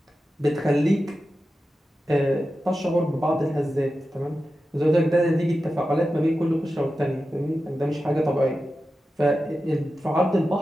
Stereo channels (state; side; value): normal; both; correlation 0.92